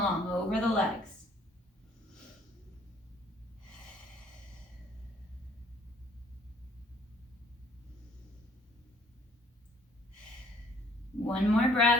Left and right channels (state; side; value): normal; both; correlation 0.61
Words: over the legs. One more